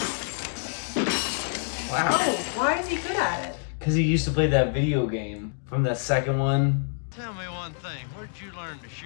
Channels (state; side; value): silent; right; 60 dB below the other